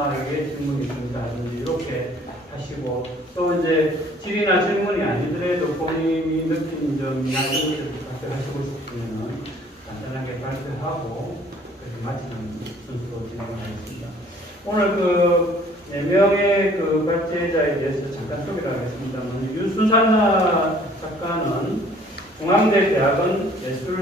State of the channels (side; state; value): both; normal; correlation 0.56